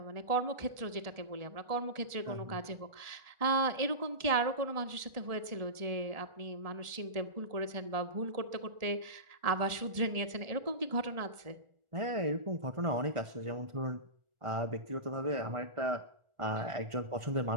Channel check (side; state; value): left; late; 1.4 ms